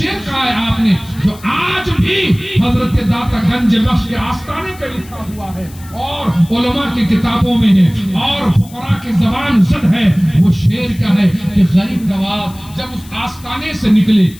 کہا ہے آپ نے جو آج بھی حضرت داتا گنج بخش کے آستانے پہ لکھا ہوا ہے اور علماء کی کتابوں میں ہے اور فقراء کی زبان زد ہے. وہ شعر کیا ہے کہ غریب نواز جب اس آستانے سے نکلے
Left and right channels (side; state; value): left; noise; hiss, 22 dB below the sound